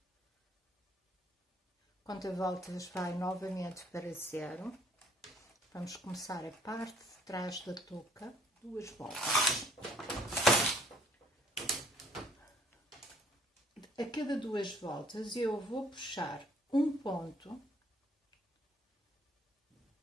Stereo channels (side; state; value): both; normal; correlation 0.62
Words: Conta voltas vai novamente para 0. Vamos começar a parte de trás da touca, 2 voltas. A cada 2 voltas eu vou puxar um ponto